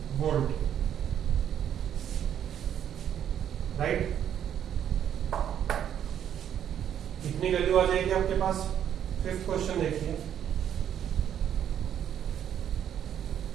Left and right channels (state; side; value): quieter; left; 9.7 dB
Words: वोल्ट, राइट। इतनी वैल्यू आ जाएगी आपके पास। फिफ्थ क्वेश्चन देखिए,